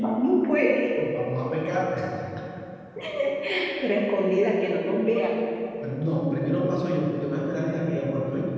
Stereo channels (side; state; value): both; identical; correlation 1.00